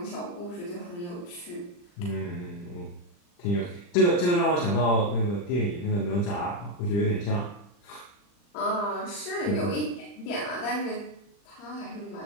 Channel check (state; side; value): late; right; 40 ms